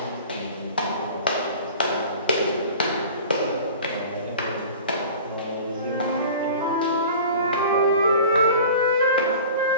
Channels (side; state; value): both; inverted; correlation -0.41